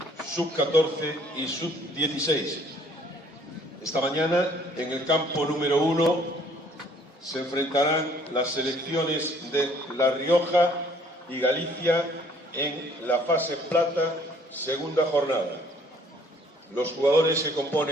sub-14 y sub-16. Esta mañana, en el campo número 1, se enfrentarán las selecciones de La Rioja y Galicia en la fase plata, segunda jornada. Los jugadores que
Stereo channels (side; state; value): both; normal; correlation 0.59